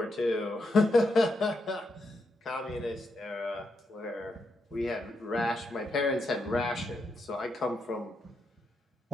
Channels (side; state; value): both; normal; correlation 0.82